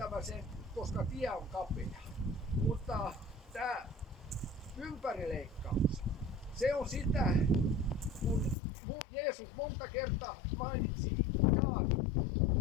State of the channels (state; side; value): drops out; right; at 8.6 s